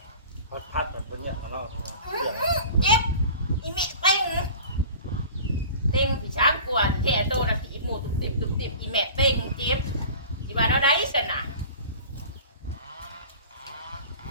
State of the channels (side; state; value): both; inverted; correlation -0.40